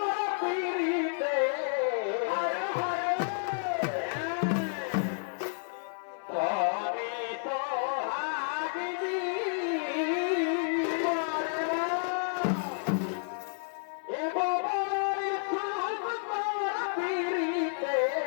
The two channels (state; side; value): silent; right; 57 dB below the other